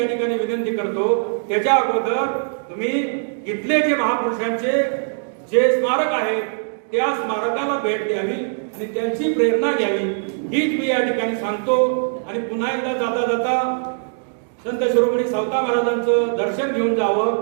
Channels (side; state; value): left; silent; digital silence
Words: ठिकाणी विनंती करतो. त्याच्या अगोदर तुम्ही इथले जे महापुरुषांचे जे स्मारक आहे त्या स्मारकाला भेट द्यावी आणि त्यांची प्रेरणा घ्यावी, हीच मी या ठिकाणी सांगतो. आणि पुन्हा एकदा जाता जाता संत शिरोमणी सावता महाराजांचं दर्शन घेऊन जावं